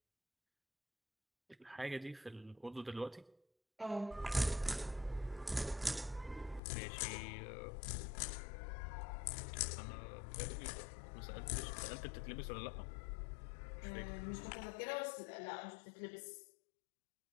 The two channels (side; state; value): right; drops out; at 6.6 s